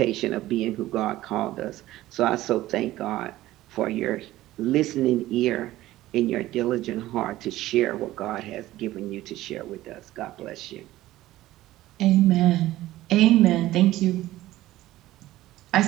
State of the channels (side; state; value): left; quieter; 15.8 dB